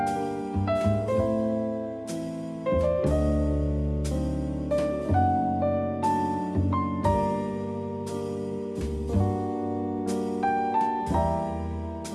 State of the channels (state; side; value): identical; both; correlation 1.00